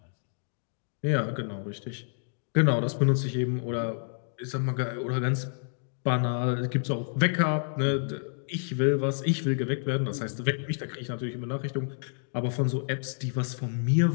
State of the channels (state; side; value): silent; right; digital silence